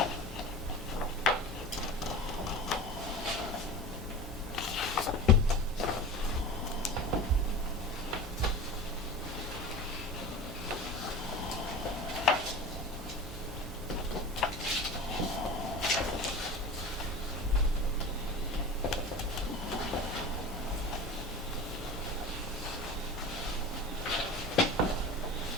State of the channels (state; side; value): normal; both; correlation 0.34